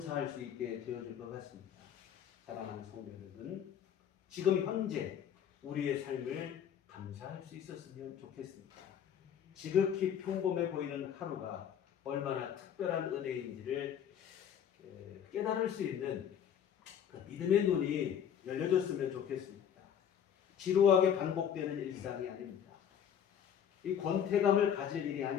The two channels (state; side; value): quieter; right; 8.8 dB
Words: 수 있게 되어질 것 같습니다. 사랑하는 성도 여러분, 지금 현재 우리의 삶을 감사할 수 있었으면 좋겠습니다. 지극히 평범해 보이는 하루가 얼마나 특별한 은혜인지를 깨달을 수 있는 그 믿음의 눈이 열려졌으면 좋겠습니다. 지루하게 반복되는 일상이 아닙니다. 이 권태감을 가질 일이